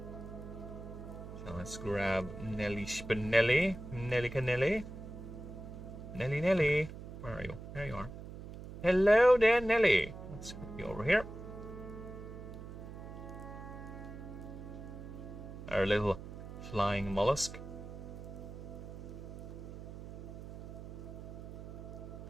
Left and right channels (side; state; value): right; noise; hum, 11 dB below the sound